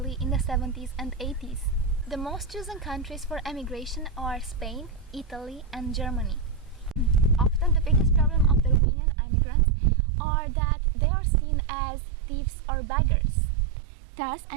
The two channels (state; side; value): drops out; left; at 8.8 s